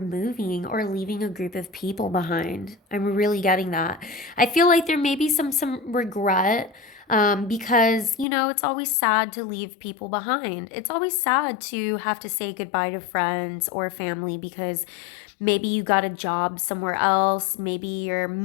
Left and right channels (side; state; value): right; drops out; at 8.2 s